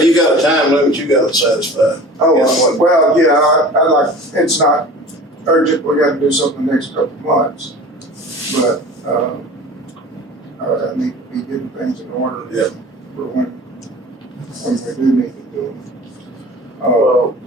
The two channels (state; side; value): normal; both; correlation 0.40